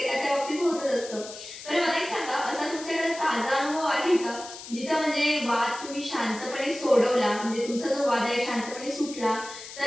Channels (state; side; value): noise; left; hiss, 13 dB below the sound